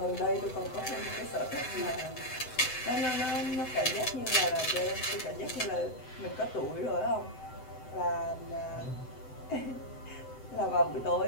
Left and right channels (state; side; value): late; right; 7.9 ms